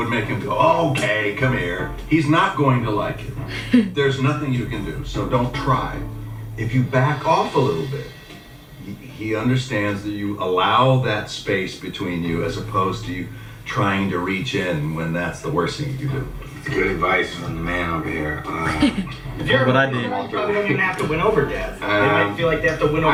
make him go, okay, come here. He's not going to like it. There's nothing you can do, so don't try. If you back off a little bit, he understands that you allow that space between you as opposed to you trying to reach in when that's the worst thing you can do. Good advice from the man over here. If you're What I you did. probably don't even have to win over dads. They might feel like they have to win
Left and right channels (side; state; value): both; identical; correlation 1.00